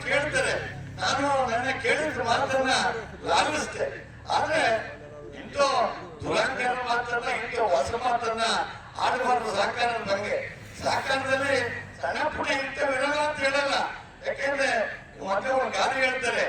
ಕೇಳ್ತಾರೆ. ನಾನು ನನ್ನ ಕೇಳಿದ ಮಾತನ್ನ ಲಾಲಿಸ್ತೆ. ಆದ್ರೆ ಇಂಥ ದುರಂಕಾರ ಮಾತನ್ನ ಇಂಥ ಹೊಸ ಮಾತನ್ನ ಆಡಬಾರ್ದು ಸಹಕಾರದ ಬಗ್ಗೆ. ಸಹಕಾರದಲ್ಲಿ ಸಣ್ಣ ಪುಟ್ಟ ಇಂಥವಿರಲ್ಲ ಅಂತ ಹೇಳಲ್ಲ. ಯಾಕೆಂದ್ರೆ ಮತ್ತೆ ಒಂದು ಗಾದೆ ಹೇಳ್ತಾರೆ,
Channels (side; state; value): both; identical; correlation 1.00